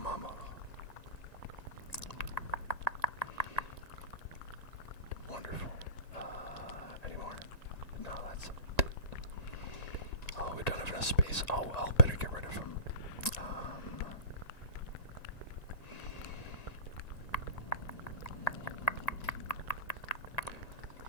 mama. Wonderful. Any more? No, that's it. Oh, we don't have enough space. Oh, well, better get rid of them.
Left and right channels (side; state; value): right; late; 1.9 ms